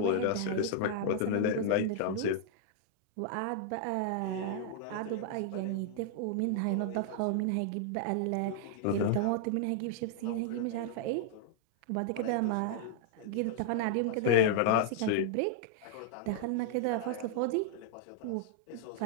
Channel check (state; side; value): different; both; correlation -0.01